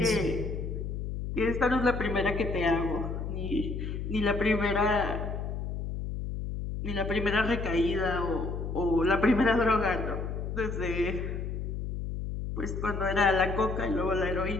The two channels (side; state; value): left; noise; hum, 4 dB below the sound